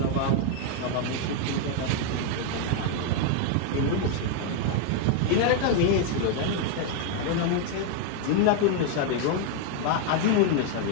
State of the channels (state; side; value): different; both; correlation 0.00